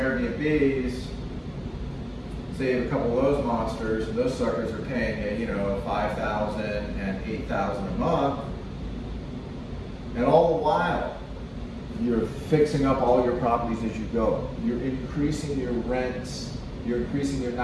Say you have a couple of those monsters, and those suckers are paying you, $5,000 and $8,000 a month. And all the while, you're fixing up all your properties as you go. You're increasing your rents. You're increasing your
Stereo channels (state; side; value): identical; both; correlation 1.00